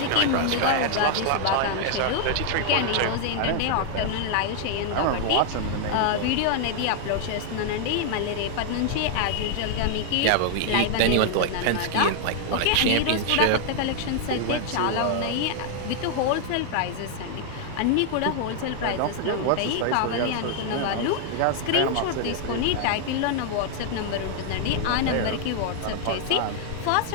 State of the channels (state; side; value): different; both; correlation 0.00